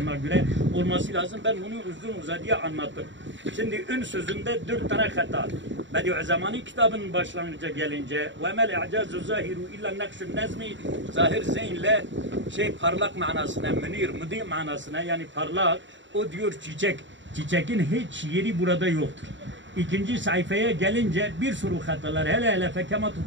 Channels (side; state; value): left; late; 0.54 ms